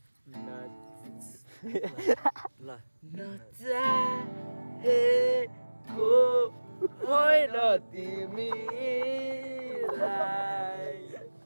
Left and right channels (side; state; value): both; inverted; correlation -1.00